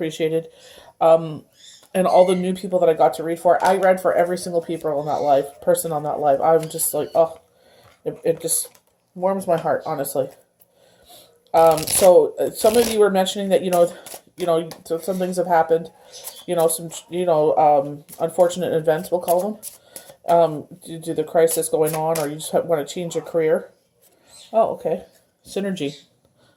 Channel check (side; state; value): both; identical; correlation 1.00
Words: And all the new people that I got to read for. I read for every single person on that live. I'm just like, oh, it just warms my heart, honestly. So some of you were mentioning that some things have happened, unfortunate events, we'll call them, due to the crisis going on, or you just want to change your career. Oh, okay, synergy.